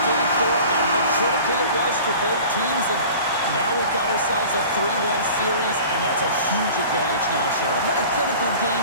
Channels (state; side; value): inverted; both; correlation -0.42